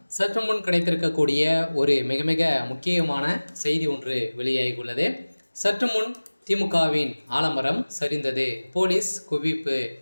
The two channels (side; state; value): both; inverted; correlation -1.00